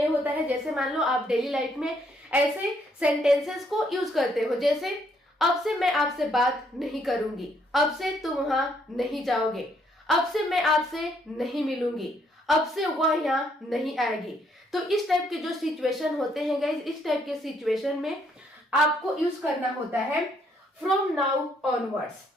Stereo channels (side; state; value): both; normal; correlation 0.70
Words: होता है, जैसे मान लो आप डेली लाइफ में ऐसे सेंटेंसेस को यूज करते हो, जैसे अब से मैं आपसे बात नहीं करूंगी, अब से तुम वहां नहीं जाओगे, अब से मैं आपसे नहीं मिलूंगी, अब से वह यहाँ नहीं आएगी। तो इस टाइप के जो सिचुएशन होते हैं गाइज, इस टाइप के सिचुएशन में आपको यूज करना होता है फ्रॉम नाउ ऑनवर्ड्स।